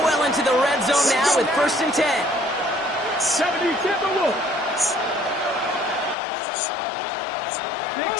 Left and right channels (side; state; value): right; drops out; at 6.2 s